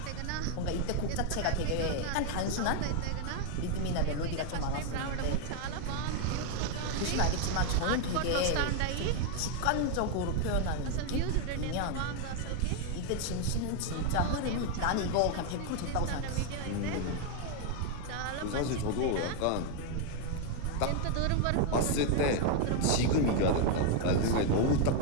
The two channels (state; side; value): different; both; correlation 0.01